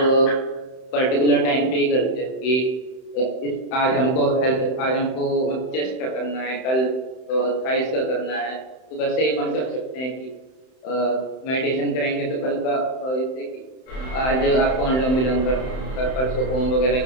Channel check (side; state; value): right; late; 31 ms